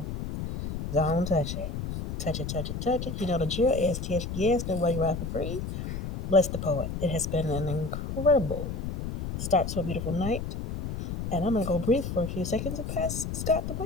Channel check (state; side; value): noise; left; rumble, 5 dB below the sound